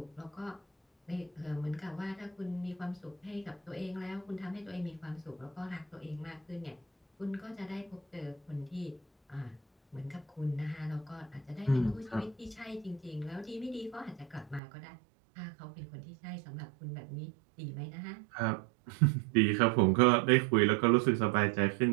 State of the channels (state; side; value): drops out; left; at 14.6 s